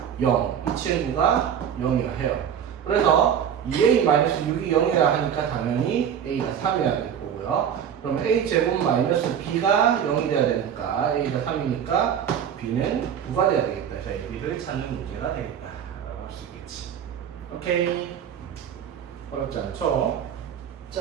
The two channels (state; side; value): quieter; left; 8.6 dB